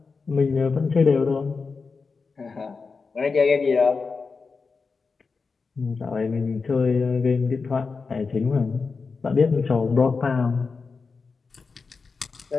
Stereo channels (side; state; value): right; quieter; 4.7 dB